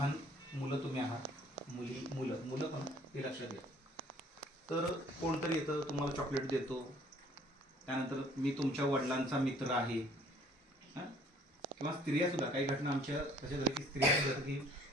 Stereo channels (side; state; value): both; normal; correlation 0.57